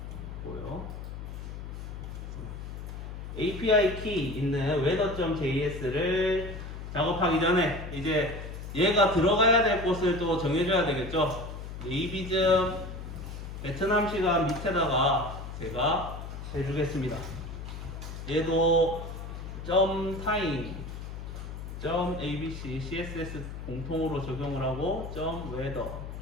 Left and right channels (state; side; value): noise; left; hum, 9 dB below the sound